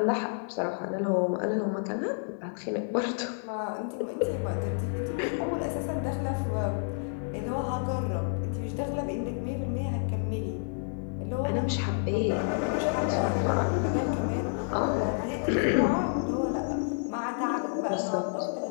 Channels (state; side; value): silent; right; digital silence